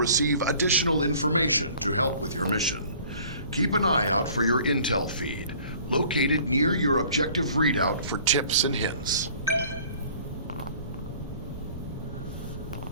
additional information to help with your mission. Keep an eye out for your intel feed, located near your objective readout for tips and hints.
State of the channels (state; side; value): inverted; both; correlation -0.51